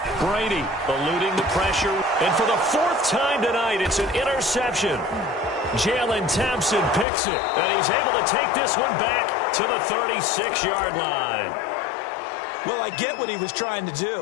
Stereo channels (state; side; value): drops out; right; at 7.1 s